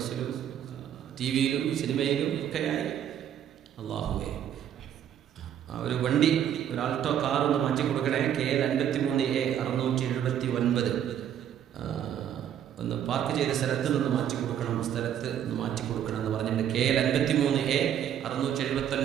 ടിവിയിലും സിനിമയിലും ഒക്കെയായി. അല്ലാഹുവേ, ഒരു വണ്ടി, ഒരു ആൾട്ടോ കാർ ഒന്ന് മാറ്റി കൊടുക്കണേ. KL 53A 679 ഒന്ന് പാർക്ക് ചെയ്ത സ്ഥലത്ത് നിന്ന് മാറ്റി കൊടുക്കണം, സ്ഥലത്ത് നിന്ന് മാറ്റി കൊടുക്കണം എന്ന് പറഞ്ഞിട്ട് KL 53A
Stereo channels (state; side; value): quieter; left; 9.9 dB